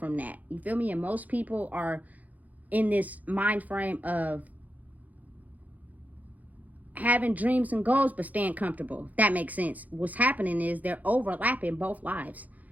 that. You feel me? And most people are in this mind frame of having dreams and goals but staying comfortable. If that makes sense. What's happening is they're overlapping both lives.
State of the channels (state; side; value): late; left; 0.079 ms